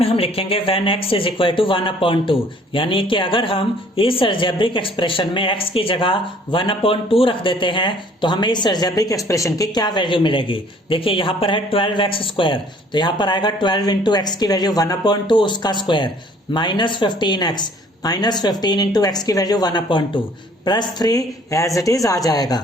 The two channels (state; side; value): normal; both; correlation 0.57